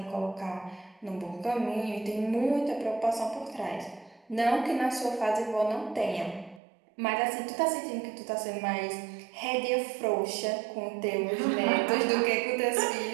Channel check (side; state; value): left; drops out; at 6.6 s